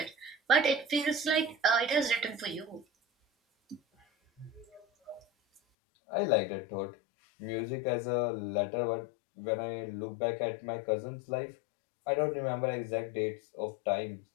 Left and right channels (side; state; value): right; drops out; at 5.6 s